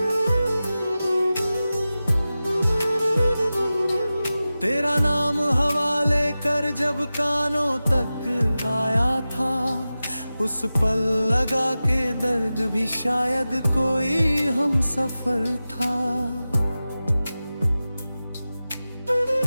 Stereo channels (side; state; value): both; inverted; correlation -0.95